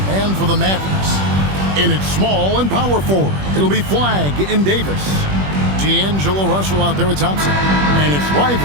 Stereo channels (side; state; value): left; late; 21 ms